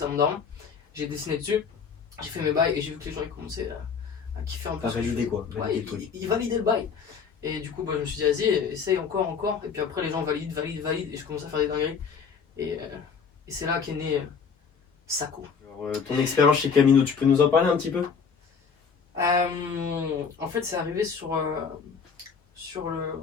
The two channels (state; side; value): quieter; right; 6.1 dB